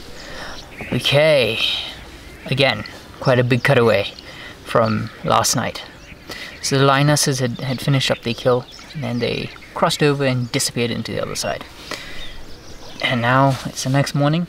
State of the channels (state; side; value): identical; both; correlation 1.00